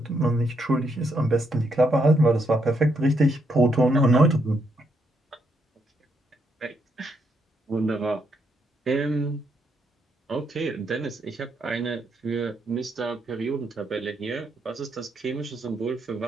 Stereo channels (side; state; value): both; normal; correlation 0.76